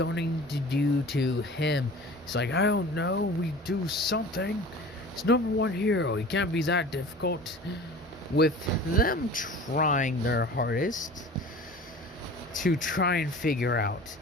to do to him? He's like, I don't know, we do something. He's #1 hero, he can't be that difficult. With them trying their hardest to try and figure out,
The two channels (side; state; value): both; normal; correlation 0.40